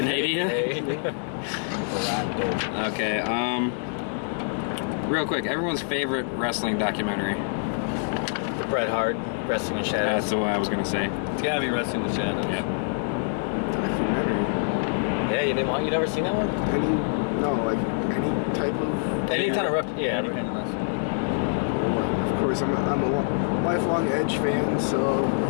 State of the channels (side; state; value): right; silent; digital silence